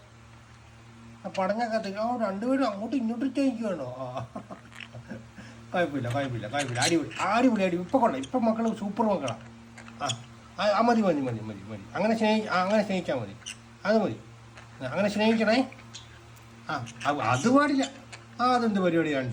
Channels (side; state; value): both; identical; correlation 1.00